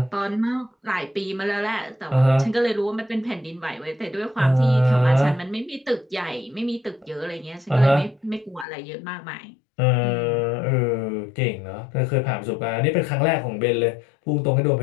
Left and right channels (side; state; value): right; drops out; at 8.7 s